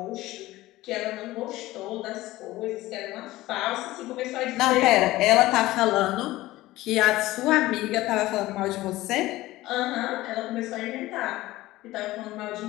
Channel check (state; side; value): quieter; right; 17.4 dB